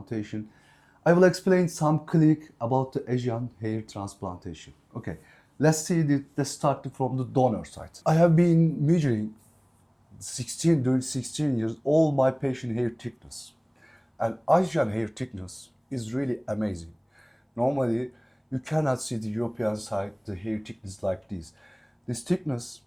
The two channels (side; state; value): both; identical; correlation 1.00